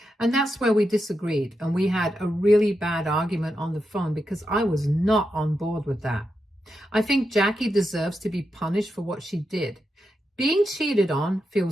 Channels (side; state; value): both; normal; correlation 0.87